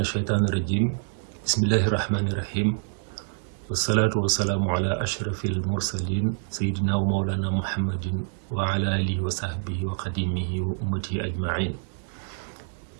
الرجيم. بسم الله الرحمن الرحيم. والصلاة والسلام على أشرف المرسلين سيدنا ومولانا محمد وعلى آله وصحبه وقديمه وأمته أجمعين.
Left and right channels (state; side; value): silent; left; 57 dB below the other